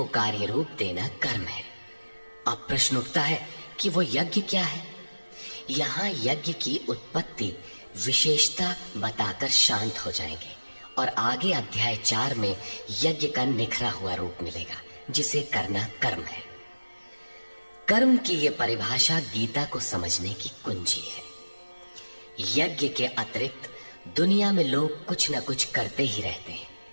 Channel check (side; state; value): both; inverted; correlation -1.00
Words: कार्य रूप देना कर्म है। अब प्रश्न उठता है कि वो यज्ञ क्या है। यहाँ यज्ञ की उत्पत्ति विशेषता बताकर शांत हो जाएंगे और आगे अध्याय 4 में यज्ञ का निखरा हुआ रूप मिलेगा, जिसे करना कर्म है। कर्म की ये परिभाषा गीता को समझने की कुंजी है। यज्ञ के अतिरिक्त दुनिया में लोग कुछ न कुछ करते ही रहते हैं।